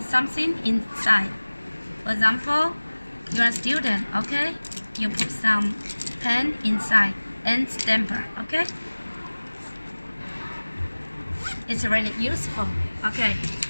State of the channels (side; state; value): both; inverted; correlation -1.00